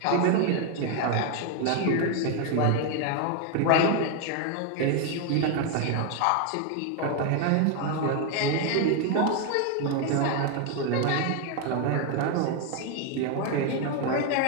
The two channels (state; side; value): different; both; correlation 0.01